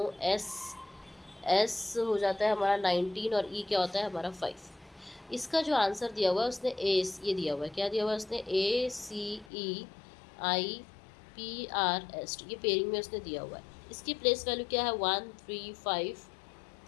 S हो जाता है हमारा 19 और E क्या होता है हमारा 5। इसका जो आंसर दिया हुआ है उसने ये दिया हुआ है, क्या दिया हुआ है उसने, ACEIPRS, ये पेयरिंग में उसने दिया हुआ है। इसकी प्लेस वैल्यू क्या है, 1, 3, 5,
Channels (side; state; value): right; drops out; at 9.5 s